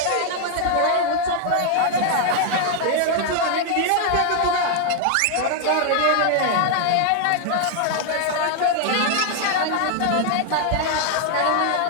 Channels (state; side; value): different; both; correlation 0.00